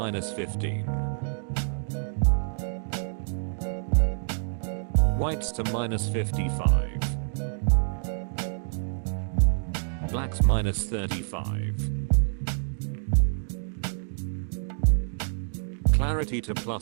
Whites to -55. Blacks -35. Clarity to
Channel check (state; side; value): silent; left; digital silence